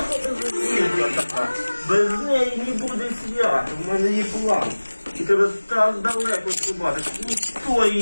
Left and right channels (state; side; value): inverted; both; correlation -1.00